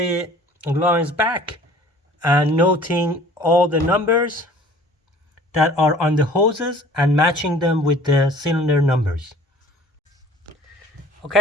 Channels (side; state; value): both; normal; correlation 0.49